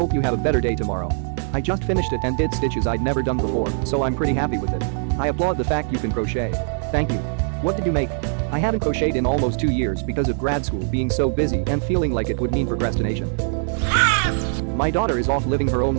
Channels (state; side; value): silent; left; 60 dB below the other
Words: you have a better day tomorrow. I just finished it and did stitches I'd never done before, so I'm pretty happy with it. I applaud the fact you can crochet. Thank you. What did you make? I haven't crocheted in almost 2 years because of grad school being so busy and feeling like it would mean procrastination. My daughter is off living her own